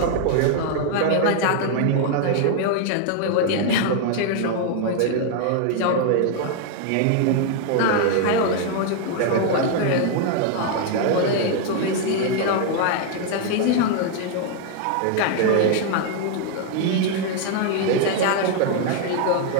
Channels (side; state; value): both; different; correlation 0.00